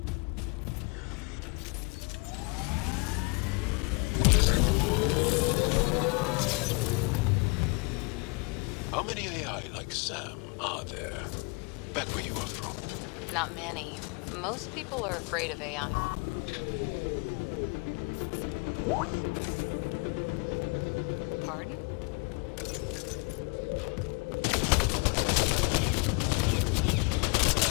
How many AI like Sam are there? Back where you are from. Not many. Most people are afraid of AI. Pardon?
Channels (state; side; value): quieter; right; 31.1 dB